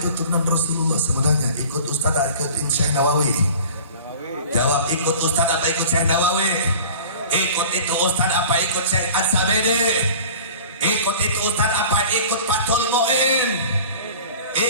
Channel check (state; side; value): inverted; both; correlation -0.42